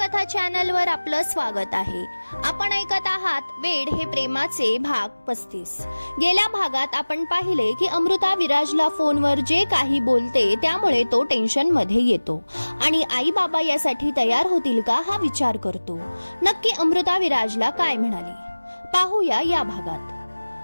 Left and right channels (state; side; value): inverted; both; correlation -1.00